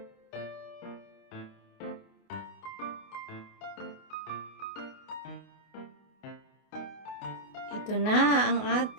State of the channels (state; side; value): late; right; 28 ms